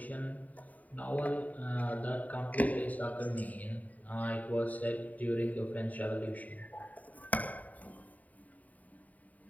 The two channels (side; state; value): right; late; 0.074 ms